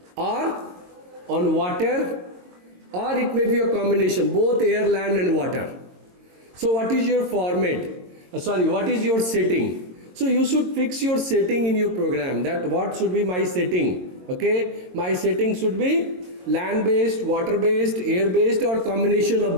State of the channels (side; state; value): left; late; 22 ms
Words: or on water, or it may be a combination, both air, land and water. So what is your format? What is your setting? So you should fix your setting in your program, that what should be my setting. Okay, my setting should be land-based, water-based, air-based, or combination of